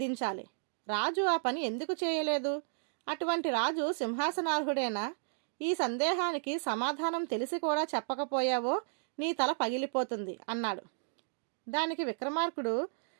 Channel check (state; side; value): silent; left; digital silence